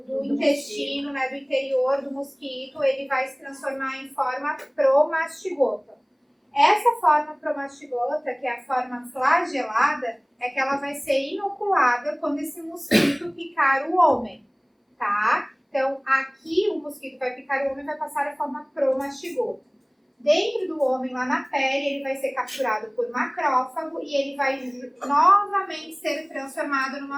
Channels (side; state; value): both; identical; correlation 1.00